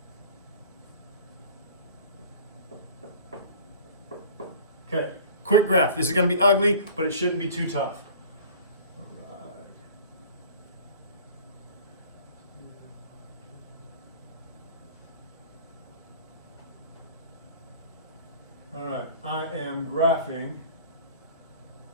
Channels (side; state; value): both; inverted; correlation -0.45